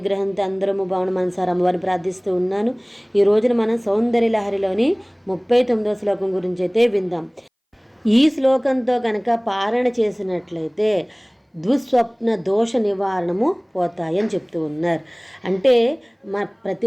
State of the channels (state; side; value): identical; both; correlation 1.00